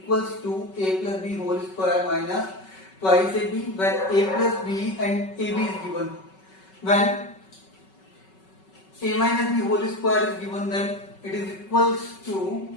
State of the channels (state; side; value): late; right; 5.3 ms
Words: to a plus b whole square minus twice ab, when a plus b and ab is given. When a minus b whole square is given, then it is equals to